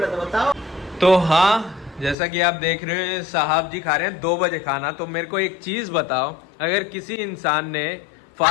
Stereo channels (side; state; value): right; drops out; at 2.1 s